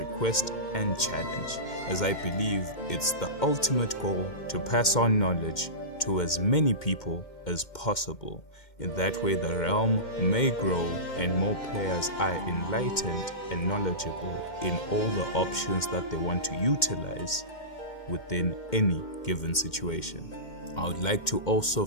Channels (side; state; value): right; late; 2.1 ms